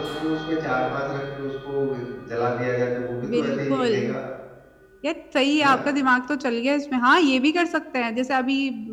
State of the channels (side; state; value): both; identical; correlation 1.00